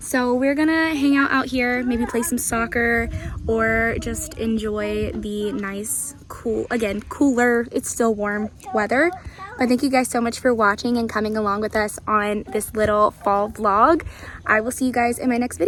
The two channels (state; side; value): identical; both; correlation 1.00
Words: we're gonna hang out here, maybe play some soccer or just enjoy the nice, cool, again, cooler, it's still warm weather. But thank you guys so much for watching and coming along with us on this little fall vlog. I will see you guys in my next